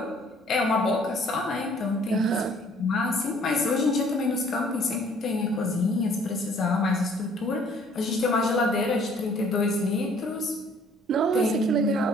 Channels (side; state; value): both; normal; correlation 0.58